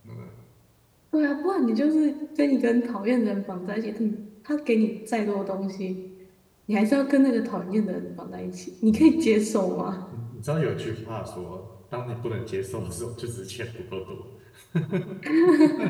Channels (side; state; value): both; identical; correlation 1.00